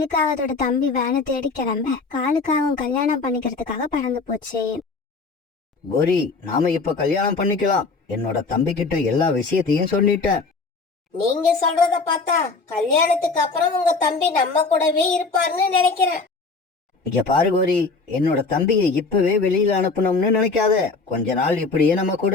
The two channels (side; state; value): right; quieter; 4.1 dB